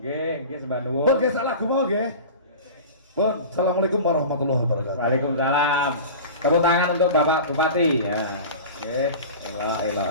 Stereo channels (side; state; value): both; inverted; correlation -0.34